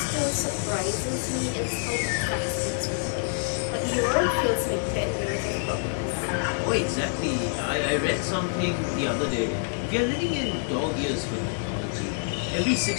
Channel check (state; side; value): silent; right; 58 dB below the other